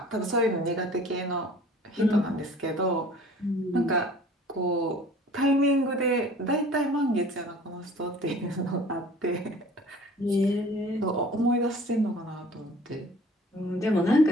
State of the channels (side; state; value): both; normal; correlation 0.48